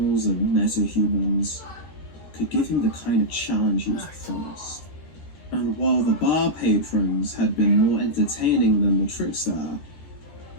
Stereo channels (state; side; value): late; right; 12 ms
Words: and meta-humans could give him the kind of challenge he was promised. And while the bar patrons had been more entertaining than the trickster,